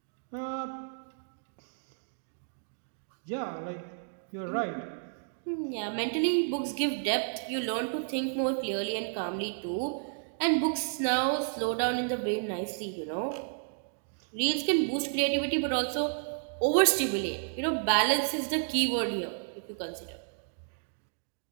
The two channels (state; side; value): silent; left; digital silence